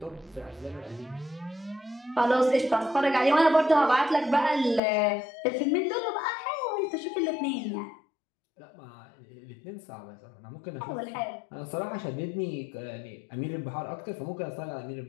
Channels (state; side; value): drops out; right; at 4.8 s